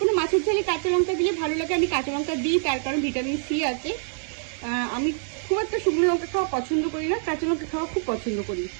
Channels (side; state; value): left; silent; 61 dB below the other